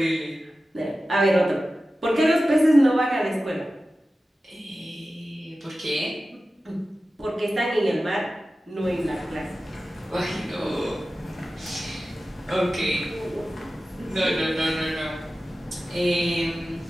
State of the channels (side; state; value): both; normal; correlation 0.95